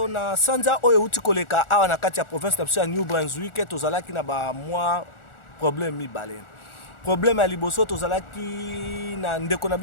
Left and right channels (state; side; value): late; right; 1.4 ms